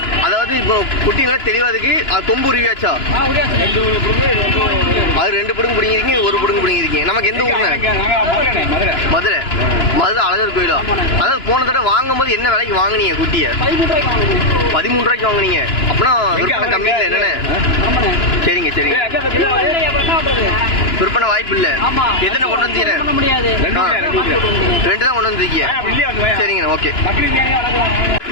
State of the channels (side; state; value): right; late; 2.9 ms